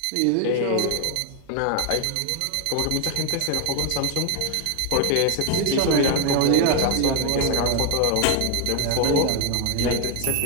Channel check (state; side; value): different; both; correlation 0.01